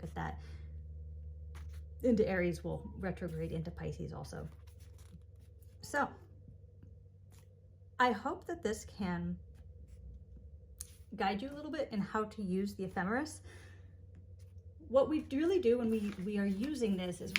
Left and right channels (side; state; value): both; identical; correlation 1.00